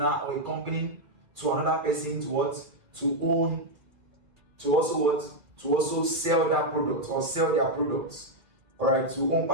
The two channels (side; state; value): left; late; 2.4 ms